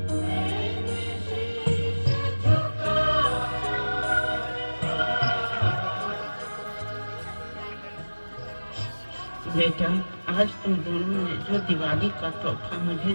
बेटा, आज तुम दोनों ने जो दिवाली का तोहफा मुझे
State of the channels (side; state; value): both; inverted; correlation -1.00